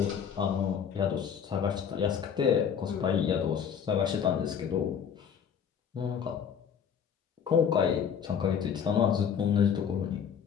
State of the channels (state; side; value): quieter; right; 7.6 dB